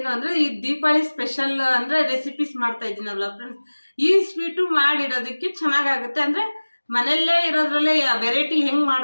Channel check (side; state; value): both; inverted; correlation -1.00